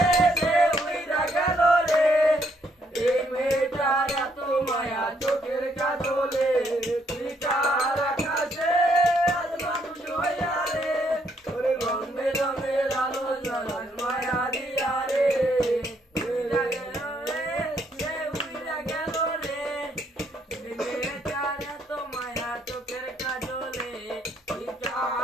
সে উইরা গেল রে এই মেয়েটার এত মায়া চোখের কাজলে তুই কার আকাশে আজ মানুষ হইয়া রে ওরে রং বেরঙের আলো জলাস মায়া দিয়া রে উইরা গেল রে সে উইরা গেল রে এই মেয়েটার এত মায়া চোখের কাজলে তুই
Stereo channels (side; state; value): both; normal; correlation 0.71